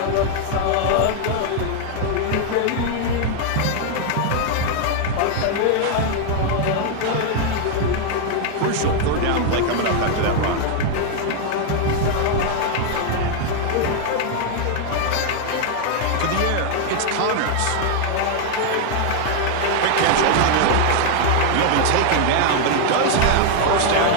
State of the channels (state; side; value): different; both; correlation 0.00